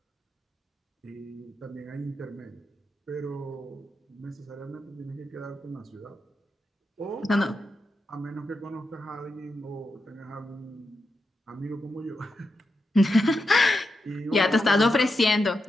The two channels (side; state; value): both; normal; correlation 0.87